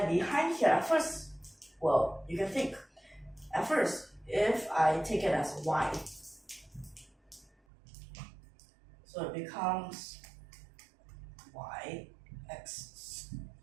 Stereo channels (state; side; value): drops out; left; at 7.5 s